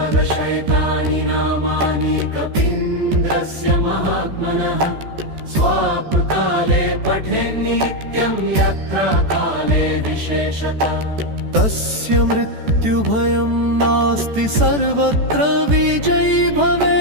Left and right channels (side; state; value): left; late; 14 ms